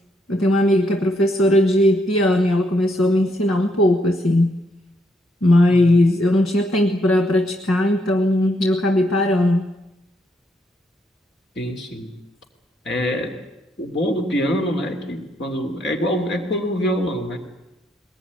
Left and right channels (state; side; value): normal; both; correlation 0.75